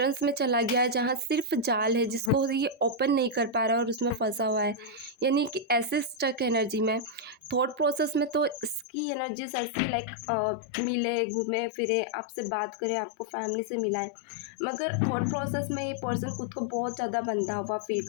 में चला गया है जहाँ सिर्फ जाल है जिसको ये ओपन नहीं कर पा रहा और उसमें फंसा हुआ है, यानी कि ऐसे स्टक एनर्जी में। थॉट प्रोसेस में तो इसकी एनर्जीज ऐसी लाइक मिले, घूमे फिरे, आपसे बात करे, आपको फैमिली से मिलाए, मगर थॉट प्रोसेस में ये पर्सन खुद को बहुत ज़्यादा बंधा हुआ फील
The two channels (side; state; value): right; drops out; at 8.8 s